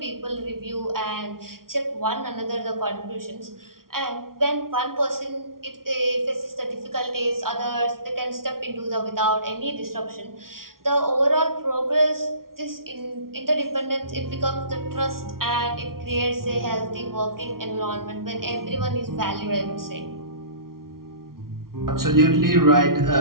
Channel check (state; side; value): late; left; 0.93 ms